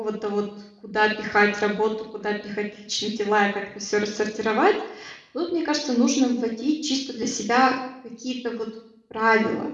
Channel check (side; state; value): both; identical; correlation 1.00